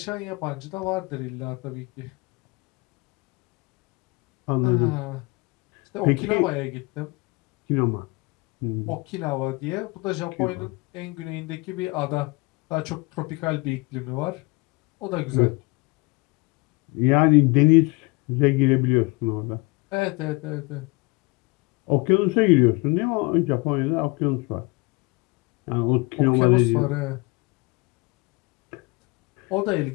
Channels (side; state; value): right; quieter; 25.6 dB